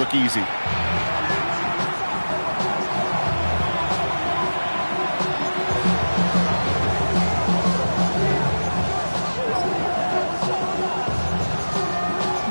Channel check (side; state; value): both; inverted; correlation -1.00